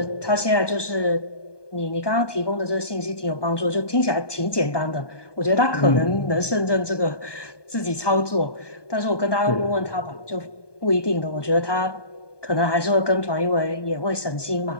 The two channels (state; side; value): late; right; 1.2 ms